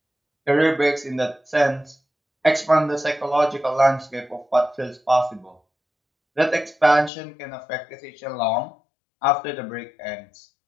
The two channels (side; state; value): right; drops out; at 7.1 s